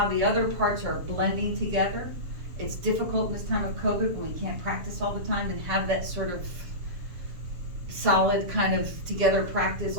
the other parts are blending together. It's difficult in this time of COVID when we can't practice all the time and have that sort of solid kind of together practice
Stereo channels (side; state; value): left; late; 7.0 ms